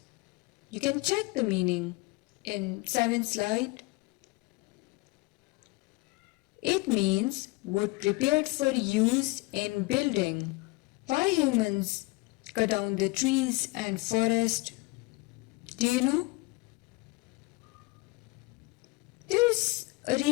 You can check the meaning in 7th slide. It means wood prepared for use in building. Why humans cut down the trees and forest? Do you know? There is a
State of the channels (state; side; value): quieter; right; 24.1 dB